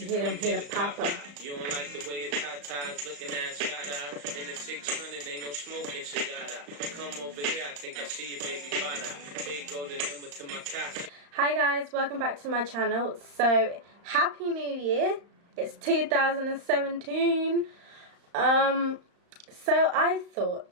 hit him, hit a papa. You don't like the way it's hot ties looking at shot out. In the 600, ain't no smoking cigar. Come over here, I think I see your baby father. Here go the number to my casa. Hi guys, welcome back to my channel. So, Happy New Year. It's 2017. So I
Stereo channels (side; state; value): left; late; 35 ms